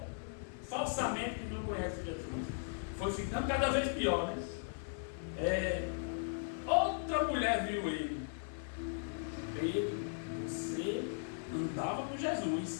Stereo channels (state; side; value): silent; right; 53 dB below the other